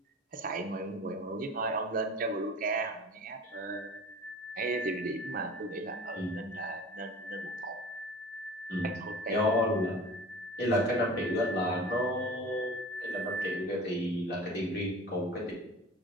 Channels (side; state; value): both; normal; correlation 0.40